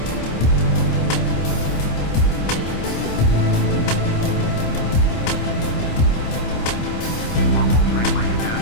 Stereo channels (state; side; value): late; right; 27 ms